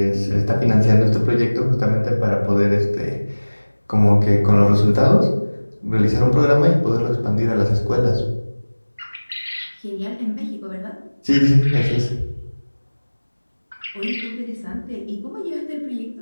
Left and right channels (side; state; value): both; inverted; correlation -1.00